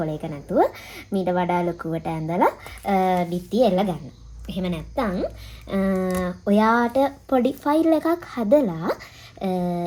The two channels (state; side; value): identical; both; correlation 1.00